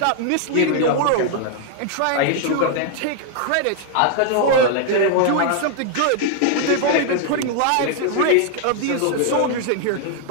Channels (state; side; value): different; both; correlation 0.00